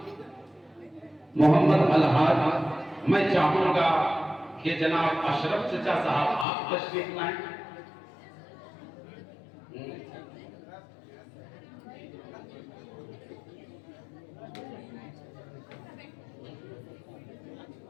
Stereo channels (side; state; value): right; drops out; at 6.5 s